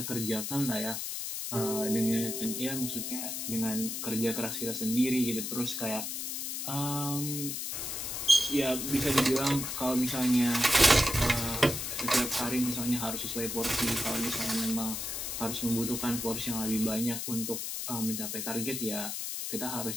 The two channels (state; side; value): noise; left; hiss, 4 dB below the sound